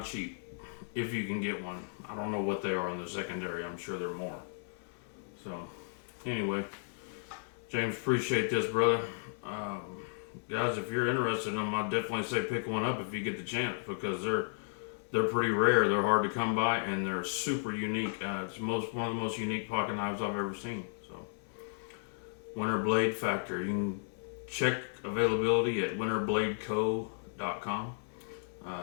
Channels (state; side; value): silent; right; digital silence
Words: cheap if you can get one. I don't know what they are in the secondary. I'm sure they're more. So anyway, James, appreciate this, brother. Guys, if you're interested in them, I'd definitely say pick one up if you get the chance, because They're pretty rare. They're hard to come by, and they're super unique. It's one of the most unique pocket knives I've ever seen. So, Winter Blade Factory. You can check availability at winterbladeco.com.